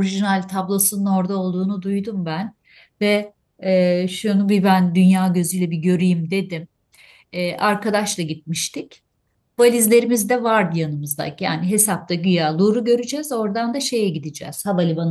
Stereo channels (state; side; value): identical; both; correlation 1.00